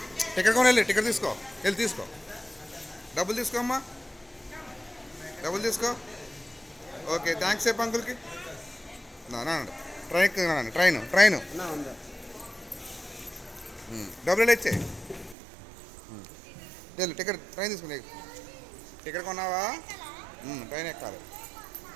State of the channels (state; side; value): drops out; left; at 15.4 s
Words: టికెట్ కొని వెళ్ళి టికెట్ తీసుకో, వెళ్ళి తీసుకో, డబ్బులు తీసుకో అమ్మా, డబ్బులు తీసుకో. ఓకే థ్యాంక్స్ చెప్పు అంకుల్కి. ట్రైన్ ట్రైన్ ట్రైన్ డబ్బులు ఇచ్చే వెళ్ళు టికెట్ ట్రైన్ తీసుకుని టికెట్ కొన్నావా? ట్రైన్ ఎక్కాలి.